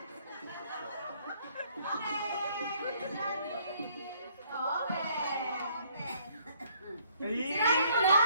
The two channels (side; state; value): both; inverted; correlation -0.64